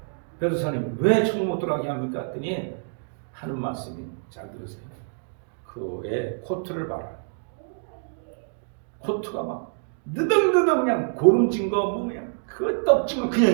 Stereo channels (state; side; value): silent; left; 61 dB below the other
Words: 베드로사님 왜 천국 못 들어가게 합니까? 했더니 하는 말씀이 잘 들으세요. 그의 코트를 봐라. 코트가 막 느덕느덕 그냥 고름진 거 뭐 그냥 그 떡진 거 그냥